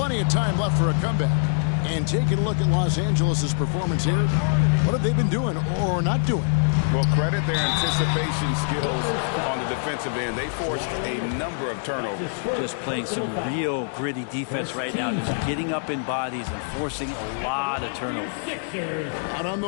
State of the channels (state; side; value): silent; right; digital silence